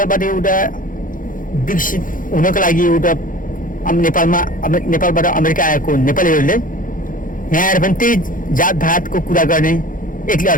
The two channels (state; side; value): late; right; 0.39 ms